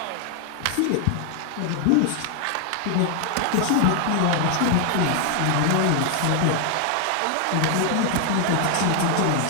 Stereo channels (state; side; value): different; both; correlation 0.00